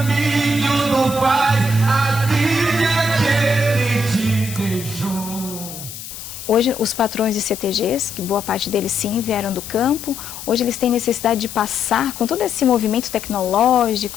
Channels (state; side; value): noise; left; hiss, 11 dB below the sound